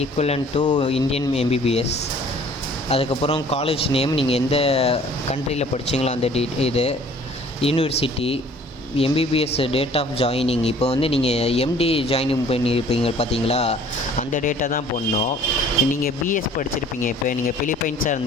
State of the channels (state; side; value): normal; both; correlation 0.53